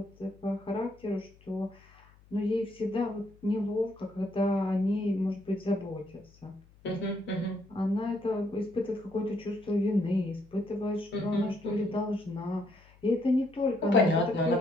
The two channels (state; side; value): noise; left; hum, 27 dB below the sound